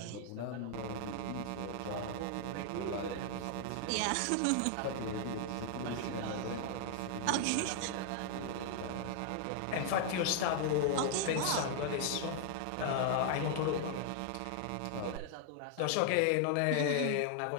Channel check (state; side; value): different; both; correlation 0.00